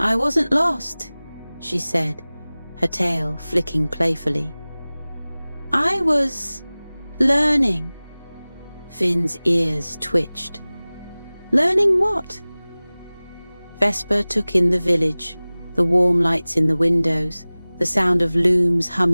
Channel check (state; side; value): inverted; both; correlation -0.99